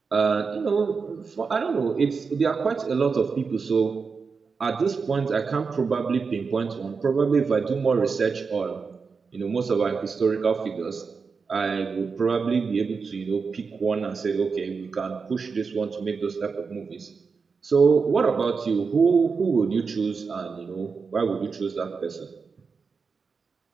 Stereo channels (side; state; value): left; quieter; 5.1 dB